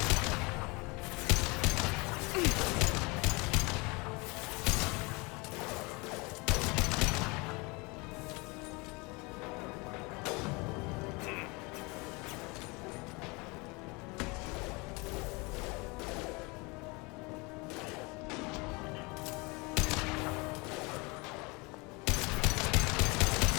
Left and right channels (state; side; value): quieter; right; 27.0 dB